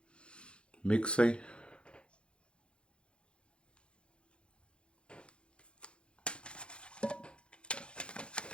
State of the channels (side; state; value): right; late; 0.056 ms